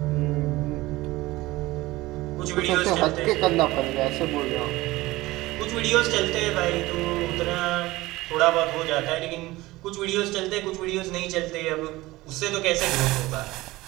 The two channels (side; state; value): left; quieter; 19.1 dB